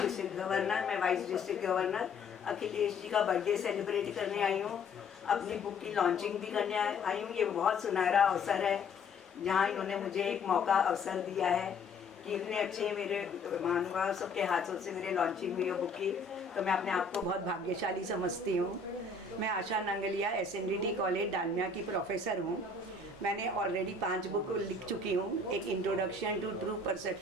गवर्नर, मैं vice district governor. Akhilesh ji का बर्थडे सेलिब्रेट करने आई हूँ, अपनी बुक की लॉन्चिंग भी करने आई हूँ। ये बहुत सुनहरा अवसर है जहाँ इन्होंने मुझे एक मौका अवसर दिया है कि इतने अच्छे मेरे महानुभाव सबके हाथों से मेरे लॉन्चिंग हुई है बुक की, तो मैं अपने आप को बहुत भाग्यशाली समझती हूँ। मैं आशा नांगलिया SNDT कॉलेज डालमिया की प्रोफेसर हूँ। मैंने ऑलरेडी 5 बुक लिख चुकी हूँ। एक introduction to true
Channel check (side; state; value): right; quieter; 3.9 dB